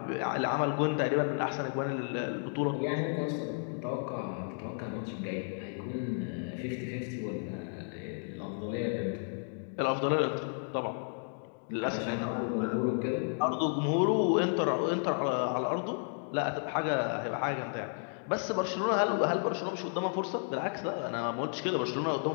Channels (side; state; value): right; silent; 56 dB below the other